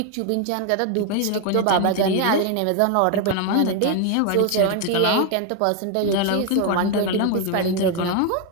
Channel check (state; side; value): different; both; correlation 0.01